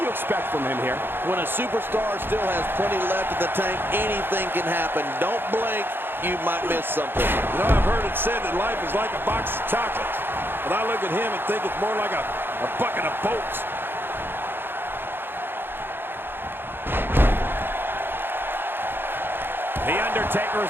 you expect from him here? When a superstar still has plenty left in the tank, anything can happen. Don't blink, you might miss something. You know, I've heard it said that life is like a box of chocolates. But I look at him and think it's more like a bucket of bolts. The Undertaker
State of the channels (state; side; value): late; left; 0.10 ms